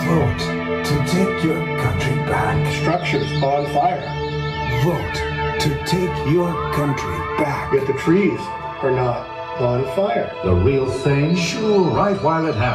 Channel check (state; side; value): identical; both; correlation 1.00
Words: Vote to take your country back. Structures on fire. Vote to take your country back. Yet the trees are not on fire. The real thing? Sure, right while it